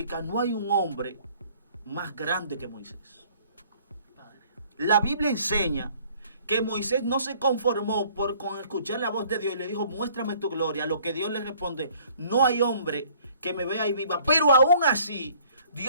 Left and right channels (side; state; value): both; inverted; correlation -0.57